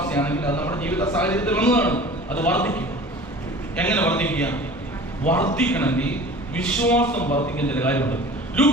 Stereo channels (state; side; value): normal; both; correlation 0.41